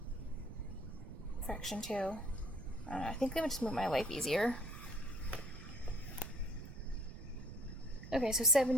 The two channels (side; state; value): right; noise; rumble, 12 dB below the sound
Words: fraction too. I think that would just make my life easier. Okay, so